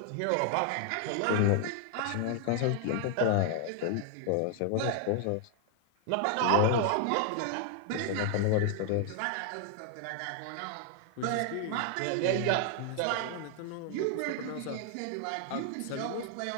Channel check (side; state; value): both; different; correlation 0.00